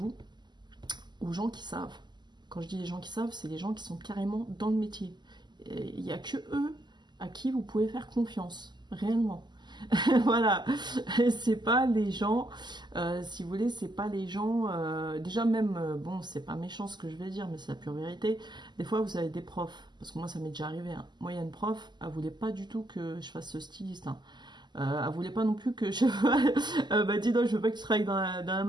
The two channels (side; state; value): left; late; 0.21 ms